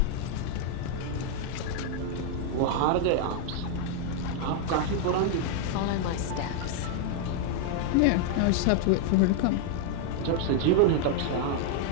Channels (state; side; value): different; both; correlation 0.00